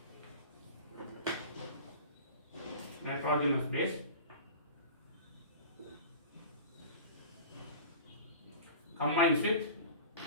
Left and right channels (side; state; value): both; inverted; correlation -0.38